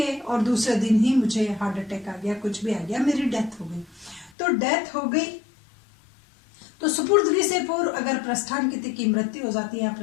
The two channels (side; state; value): right; drops out; at 4.3 s